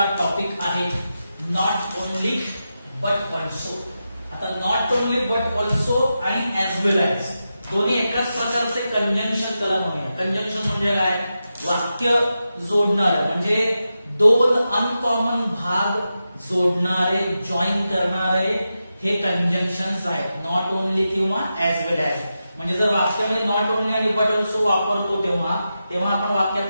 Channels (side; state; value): both; inverted; correlation -0.90